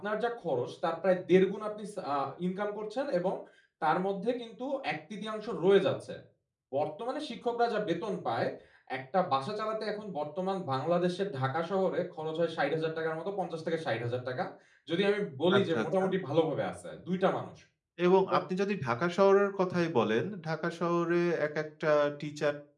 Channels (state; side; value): identical; both; correlation 1.00